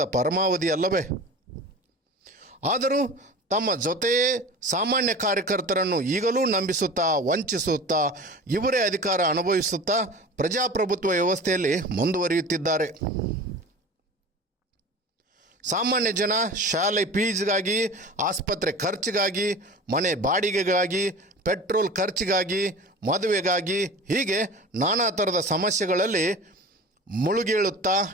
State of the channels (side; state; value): both; normal; correlation 0.36